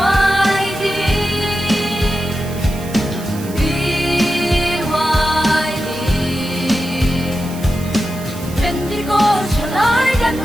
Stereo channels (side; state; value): right; noise; hiss, 16 dB below the sound